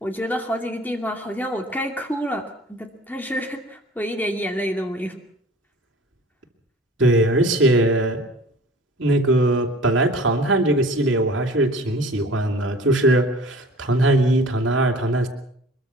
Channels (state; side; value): normal; both; correlation 0.45